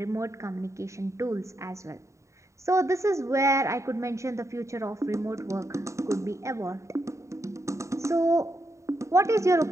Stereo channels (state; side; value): late; left; 0.14 ms